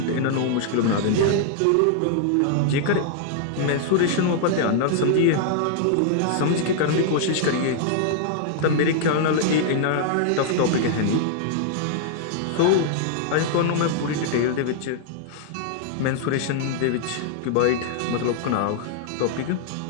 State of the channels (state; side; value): different; both; correlation -0.01